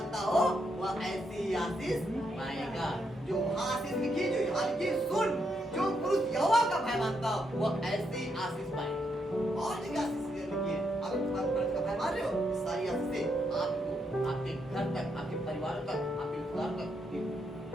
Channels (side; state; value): both; normal; correlation 0.79